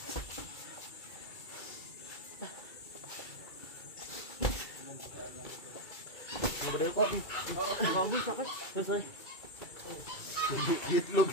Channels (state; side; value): late; right; 2.3 ms